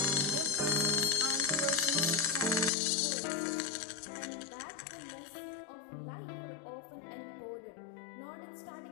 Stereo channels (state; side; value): drops out; right; at 2.7 s